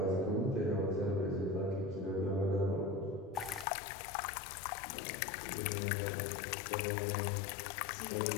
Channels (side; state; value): right; drops out; at 3.7 s